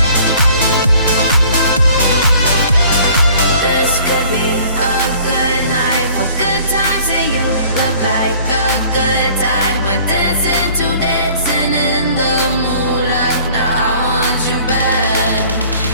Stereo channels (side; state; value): both; inverted; correlation -0.52